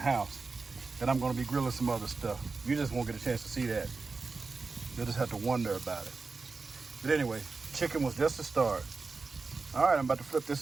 house, Then I'm gonna be grilling some other stuff. You just won't get a chance to see that. You'll just have to wonder about it. But anyway, chicken was just the start. All right, I'm about to flip this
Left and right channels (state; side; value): quieter; left; 4.2 dB